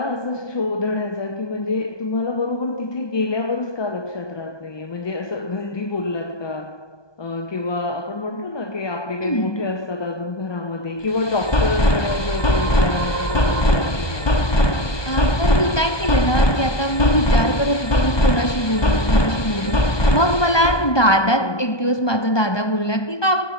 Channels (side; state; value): right; late; 1.2 ms